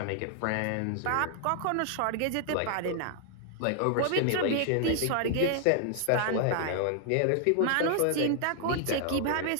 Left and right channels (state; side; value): different; both; correlation 0.00